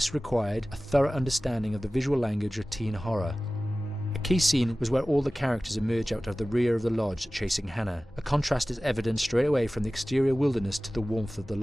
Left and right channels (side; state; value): both; normal; correlation 0.97